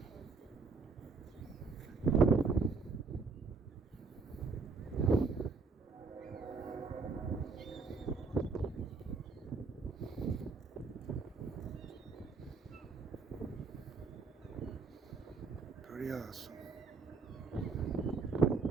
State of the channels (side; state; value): left; quieter; 4.5 dB